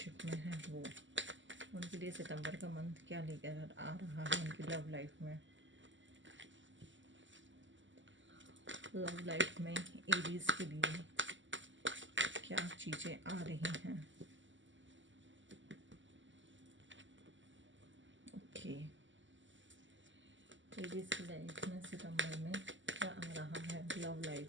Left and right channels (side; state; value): left; late; 0.55 ms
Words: में हैं वो, उनके लिए सितंबर का मंथ क्या लेकर आ रहा है उनकी लव लाइफ में। लव लाइफ में एरीज के लिए क्या चीज़ें आ रही हैं। ओके, एरीज की लाइफ में सितंबर में क्या आ रहा है। Love life,